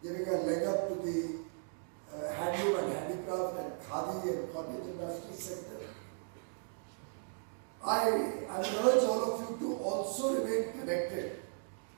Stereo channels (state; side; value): silent; left; digital silence